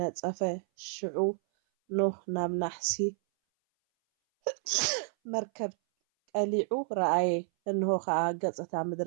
ሽዑ ኖህ ናብ ናሕሲ መርከብ ቀሊዑ ረኣየ እንሆ ከዓ ገፅታ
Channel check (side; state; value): left; silent; 57 dB below the other